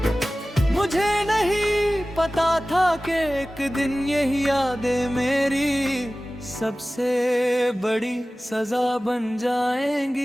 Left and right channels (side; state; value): both; normal; correlation 0.97